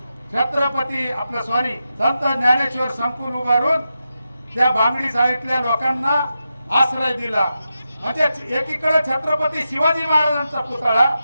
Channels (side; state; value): both; inverted; correlation -0.89